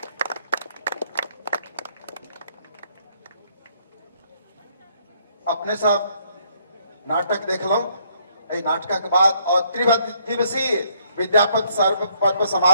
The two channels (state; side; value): inverted; both; correlation -0.69